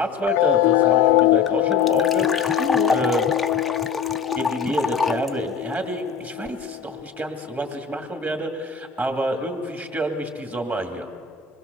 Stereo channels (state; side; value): quieter; right; 6.2 dB